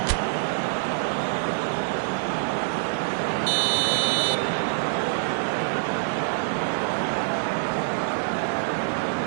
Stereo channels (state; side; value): silent; left; digital silence